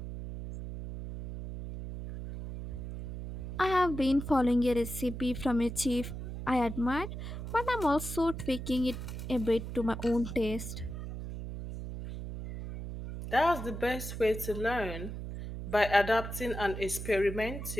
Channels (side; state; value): right; noise; hum, 7 dB below the sound